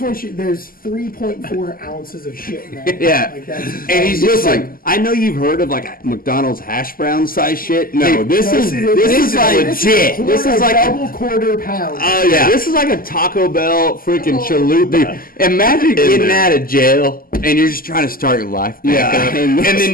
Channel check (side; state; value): right; late; 0.42 ms